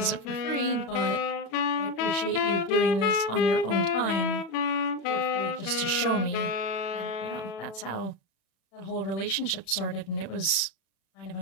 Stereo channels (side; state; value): right; late; 36 ms